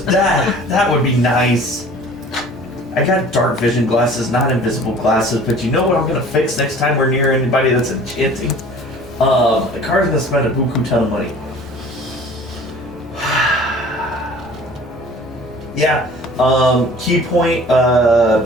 that. That would be nice. I got dark vision glasses, not invisible glasses, but you know what I'm gonna fix next time we're near anybody that's enchanting? The Kari's gonna spend a buku ton of money. Yeah. Key point,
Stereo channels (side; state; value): both; normal; correlation 0.47